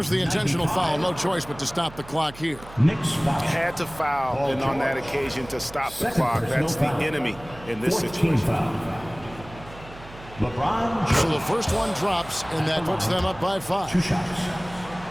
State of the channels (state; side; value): noise; right; hum, 18 dB below the sound